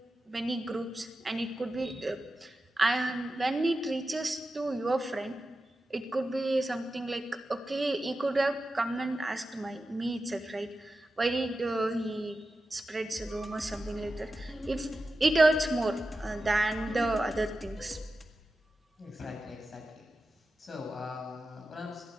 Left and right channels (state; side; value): normal; both; correlation 0.92